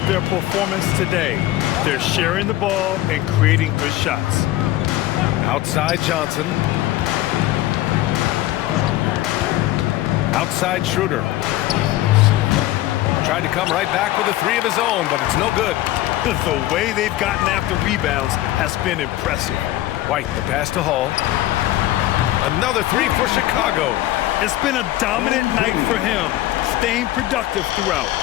their performance today. They're sharing the ball and creating good shots. Outside Johnson. Outside Schroeder. Tried to come right back with a 3 of his own, but it's no good. The way they've gotten after rebounds has been impressive. White, the pass to Hall. Another 3 for Chicago. It's been a dominant night for him, staying productive throughout.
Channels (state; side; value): quieter; right; 15.7 dB